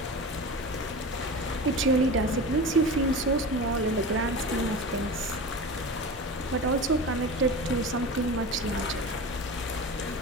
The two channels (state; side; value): normal; both; correlation 0.30